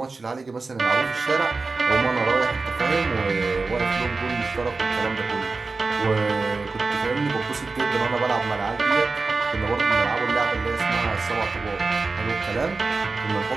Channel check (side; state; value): left; quieter; 3.9 dB